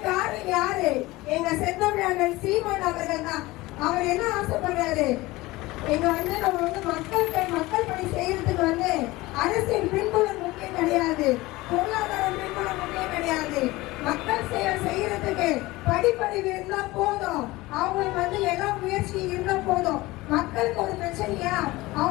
காரணம் யாரு? எங்க செந்தமிழ் சீமான் அவர்கள் தான். அவர் என்ன ஆசைப்படுறாரு? எங்க வந்து நம்ம வந்து மக்கள் பணி செய்யறதுக்கு வந்து அரசியல் பின்புலம் முக்கியம் கிடையாது, பொருளாதாரம் பின்புலம் முக்கியம் கிடையாது. மக்கள் செய்யறதுக்கு படிப்பறிவு இருந்தா போதும், அவங்களுக்கு வந்து எல்லா முயற்சி இருந்தா போதும். மக்களுக்கு ஒரு பிரச்சனையா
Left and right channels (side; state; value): right; quieter; 19.9 dB